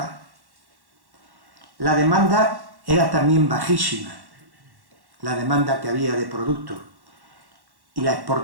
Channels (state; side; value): late; left; 1.1 ms